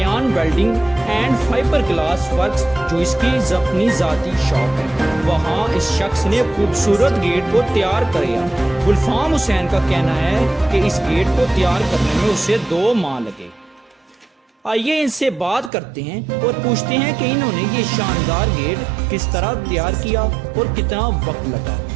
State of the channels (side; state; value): left; drops out; at 15.7 s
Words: welding and fibre glass works جو اس کی اپنی ذاتی شاپ ہے، وہاں اس شخص نے خوبصورت گیٹ کو تیار کیا۔ گلفام حسین کا کہنا ہے کہ اس گیٹ کو تیار کرنے میں اسے 2 ماہ لگے۔ آئیے ان سے بات کرتے ہیں اور پوچھتے ہیں کہ انہوں نے یہ شاندار گیٹ کس طرح تیار کیا اور کتنا وقت لگا،